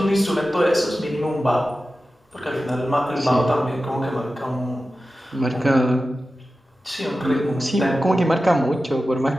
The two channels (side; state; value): both; normal; correlation 0.94